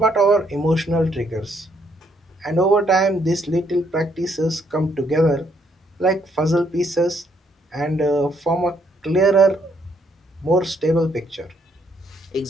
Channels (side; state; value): both; normal; correlation 0.71